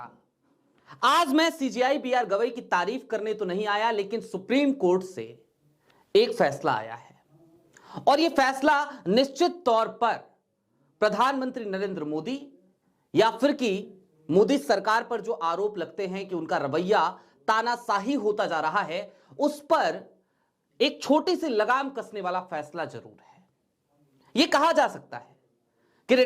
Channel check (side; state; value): both; identical; correlation 1.00